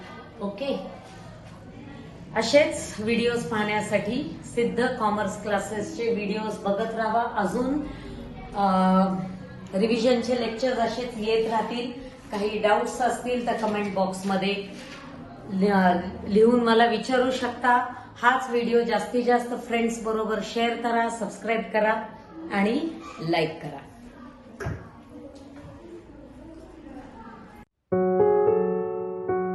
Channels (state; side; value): identical; both; correlation 1.00